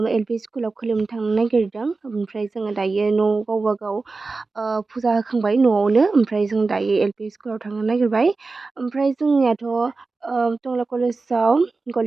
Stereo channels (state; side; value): quieter; left; 3.9 dB